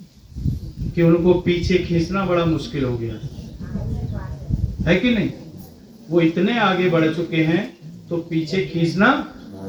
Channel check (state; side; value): identical; both; correlation 1.00